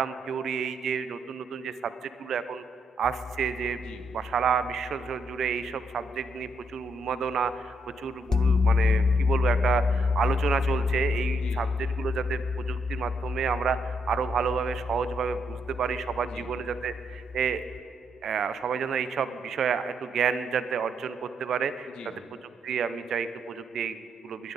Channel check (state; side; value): normal; both; correlation 0.76